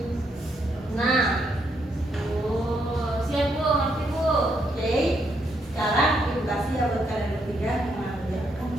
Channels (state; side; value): normal; both; correlation 0.76